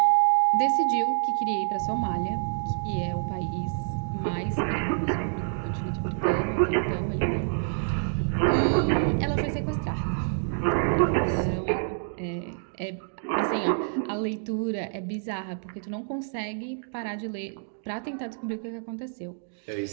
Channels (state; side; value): silent; left; digital silence